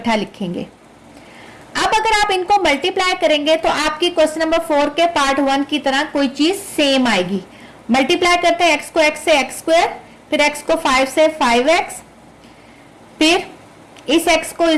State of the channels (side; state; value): both; identical; correlation 1.00